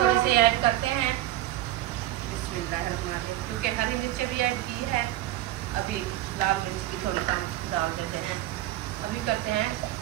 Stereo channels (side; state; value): left; quieter; 14.9 dB